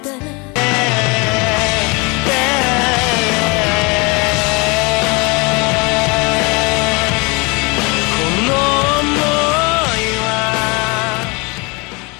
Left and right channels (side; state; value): right; quieter; 28.1 dB